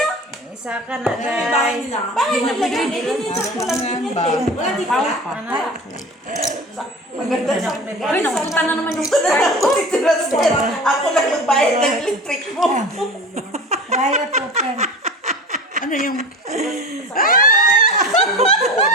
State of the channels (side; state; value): both; normal; correlation 0.35